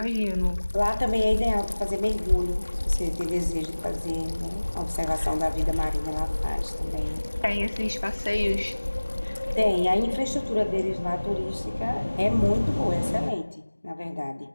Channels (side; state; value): both; inverted; correlation -1.00